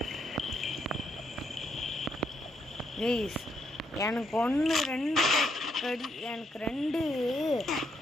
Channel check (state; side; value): normal; both; correlation 0.76